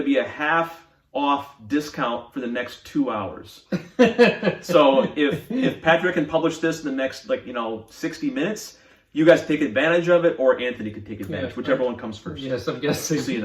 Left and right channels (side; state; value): both; identical; correlation 1.00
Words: be a half off discount for the next 2 hours. So if Patrick can publish this in the next 60 minutes, you guys take advantage of it, or Anthony could take advantage, Yeah. whichever one comes first. Yes, I'm guessing. So you